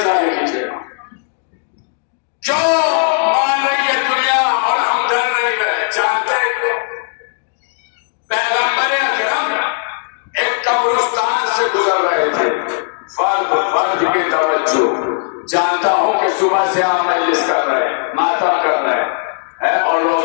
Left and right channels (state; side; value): silent; right; digital silence